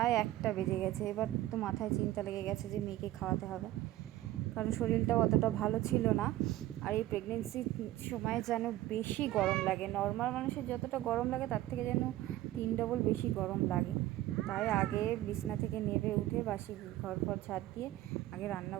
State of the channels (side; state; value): left; quieter; 15.2 dB